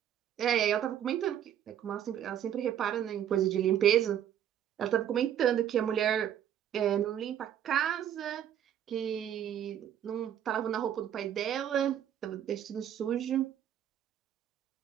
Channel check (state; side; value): quieter; left; 10.1 dB